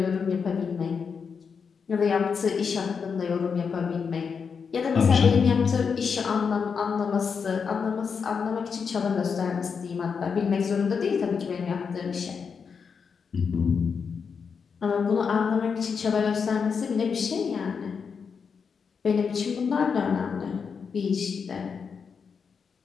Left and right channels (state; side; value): quieter; right; 6.0 dB